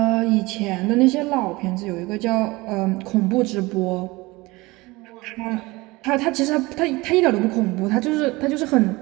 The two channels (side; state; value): left; quieter; 22.2 dB